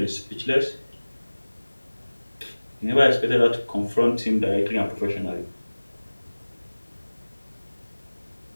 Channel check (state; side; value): inverted; both; correlation -1.00